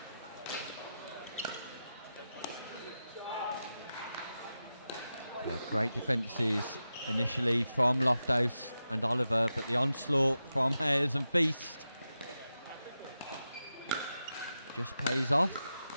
Great defences initially from Lofthouse and Oliver, but the onslaught from Hares and Feast just pays off.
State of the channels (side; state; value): both; inverted; correlation -0.91